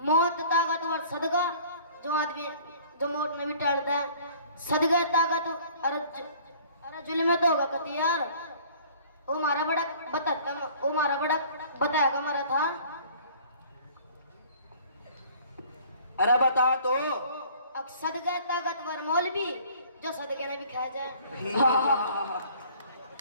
मौत ताकतवर सदका जो आदमी जो मौत ने भी टाल दे, सदका ताकत अरे जुल्म तो होगा कति यार। वो मारा बड़ा बताएगा मारा था। अरे बता तो। अब सदका ताकतवर मौलवी जो सदके ने भी खा जाए।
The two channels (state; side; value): inverted; both; correlation -0.52